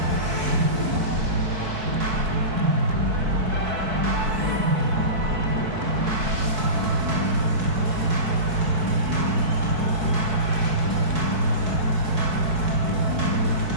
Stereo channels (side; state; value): left; late; 4.6 ms